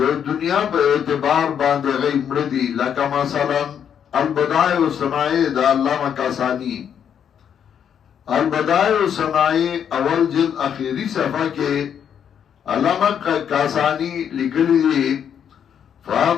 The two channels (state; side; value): quieter; right; 8.4 dB